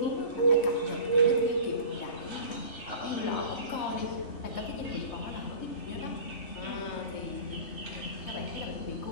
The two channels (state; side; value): late; right; 3.3 ms